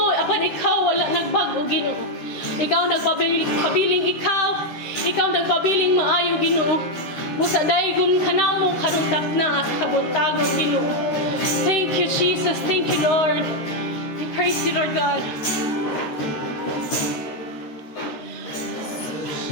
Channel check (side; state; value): right; late; 13 ms